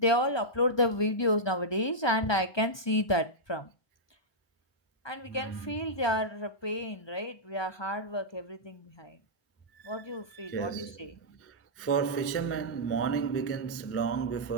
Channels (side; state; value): right; late; 1.2 ms